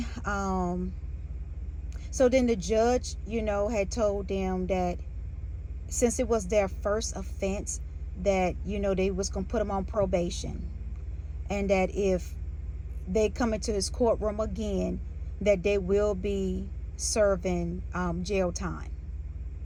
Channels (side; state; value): both; identical; correlation 1.00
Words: the judge, had told them that since it was their first offense, that they was gonna put them on probation, and that if they come into his courtroom again, that they will be serving jail time.